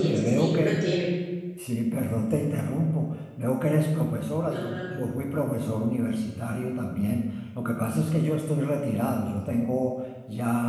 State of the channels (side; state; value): both; identical; correlation 1.00